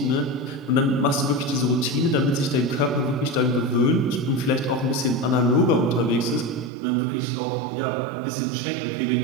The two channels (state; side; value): drops out; left; at 6.7 s